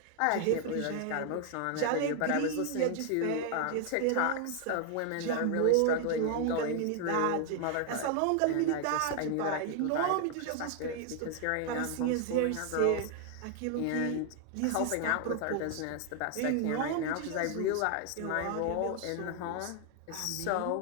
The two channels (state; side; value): different; both; correlation 0.00